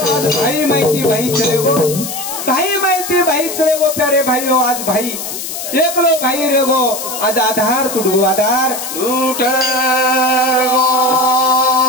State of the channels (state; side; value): noise; left; hiss, 7 dB below the sound